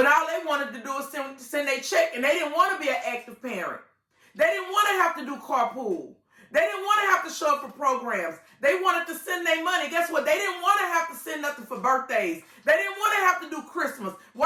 all they wanted to do is send their check and they didn't want to be an active parent. They didn't want to have to do carpool. They didn't want to have to show up for programs. They wanted to send their money. Guess what? They didn't want to have to send nothing for birthdays. They didn't want to have to do Christmas.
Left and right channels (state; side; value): identical; both; correlation 1.00